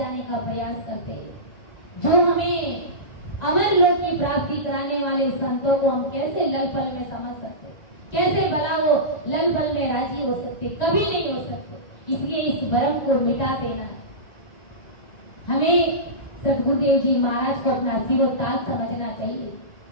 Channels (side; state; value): right; late; 1.9 ms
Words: का प्रयास करते हैं। जो हमें अमर लोक की प्राप्ति कराने वाले संतों को हम कैसे लल पल में समझ सकते, कैसे भला वो लल पल में राजी हो सकते, कभी नहीं हो सकते। इसलिए इस भ्रम को मिटा देना है। हमें सतगुरुदेव जी महाराज को अपना सिरोताज समझना चाहिए।